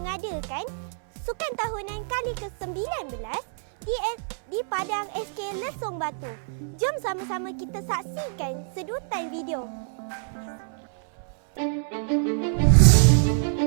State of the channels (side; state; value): left; silent; 59 dB below the other